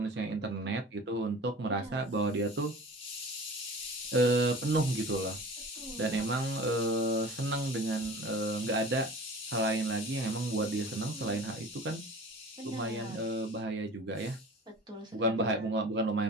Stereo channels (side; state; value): both; normal; correlation 0.41